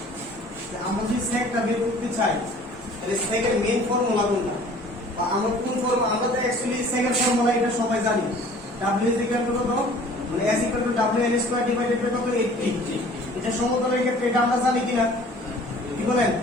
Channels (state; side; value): normal; both; correlation 0.50